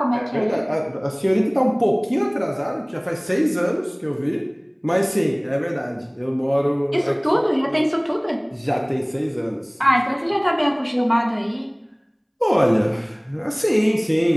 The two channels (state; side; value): identical; both; correlation 1.00